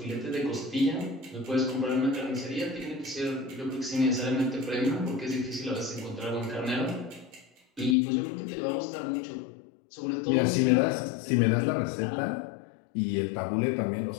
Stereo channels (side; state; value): right; drops out; at 8.0 s